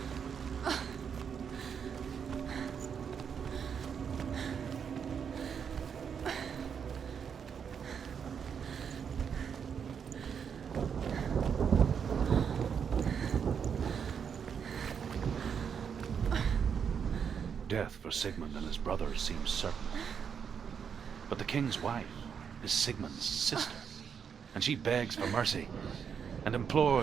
Death for Sigmund and his brothers seems certain. But the king's wife is Sigmund's sister, and she begs for mercy and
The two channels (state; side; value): quieter; left; 7.2 dB